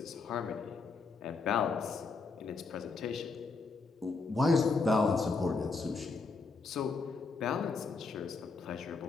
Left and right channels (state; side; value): quieter; right; 4.3 dB